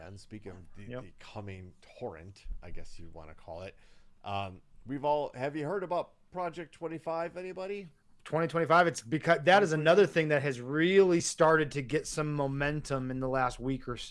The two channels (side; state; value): both; identical; correlation 1.00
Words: and speaking of the coming torrent, I guess you'd want to call it, have you heard about Project 25? Anybody? 2025. It's because that is another thing that has really started to get some momentum in the last week or